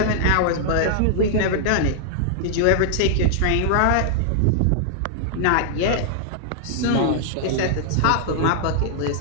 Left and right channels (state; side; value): different; both; correlation -0.01